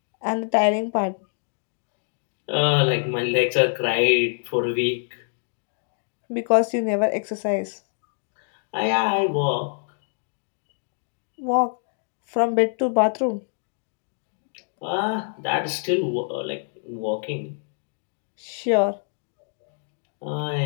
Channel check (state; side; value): silent; right; 61 dB below the other